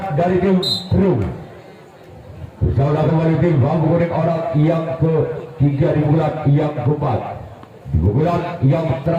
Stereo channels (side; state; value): both; identical; correlation 1.00